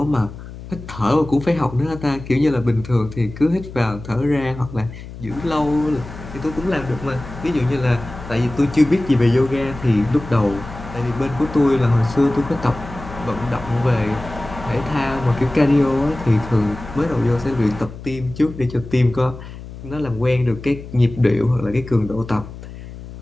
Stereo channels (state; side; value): noise; left; hum, 13 dB below the sound